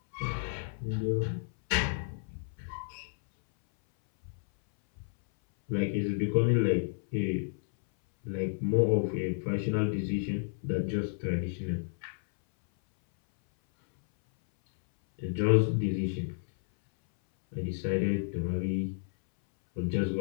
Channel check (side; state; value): right; silent; 57 dB below the other